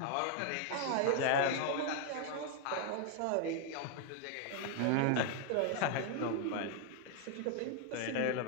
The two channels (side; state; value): both; different; correlation 0.00